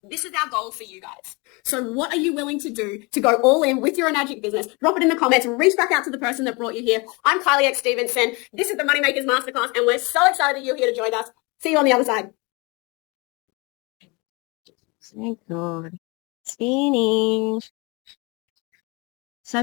This is our goal for you guys. So what are you willing to do to go all in with your NAGIC business? Drop it in the comments. Reach back out to the person that brought you here. I'm Kylie X. Stevenson. This is the Moneymakers Masterclass, and we're so excited that you're here to join us. See you on the other side. Thank God. Spinning. So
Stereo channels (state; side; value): quieter; right; 27.8 dB